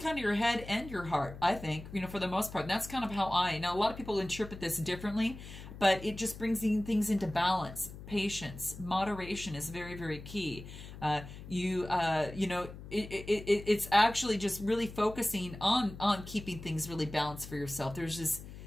of your head and your heart, I think, you know, for the most part. And that's kind of how now a lot of people interpret this differently, but it just brings things into balance. Patience, moderation is very, very key. You know, it's actually just really focusing on keeping things really balanced for yourself. There's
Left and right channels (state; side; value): noise; left; hum, 13 dB below the sound